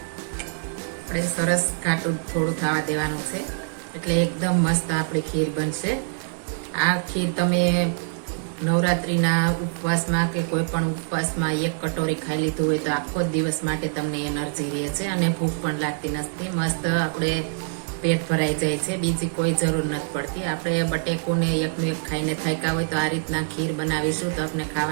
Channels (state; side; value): silent; left; digital silence